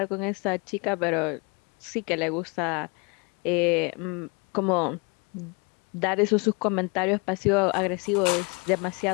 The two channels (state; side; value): quieter; right; 30.9 dB